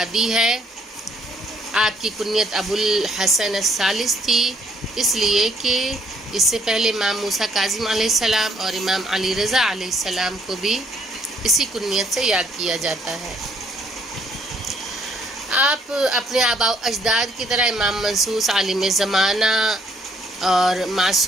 ہے۔ آپ کی کنیت ابو الحسن الثالث تھی، اس لیے کہ اس سے پہلے امام موسیٰ کاظم علیہ السلام اور امام علی رضا علیہ السلام کو بھی اسی کنیت سے یاد کیا جاتا ہے۔ آپ اپنے آباء و اجداد کی طرح امام منصوص، عالم زمانہ اور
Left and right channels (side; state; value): both; normal; correlation 0.67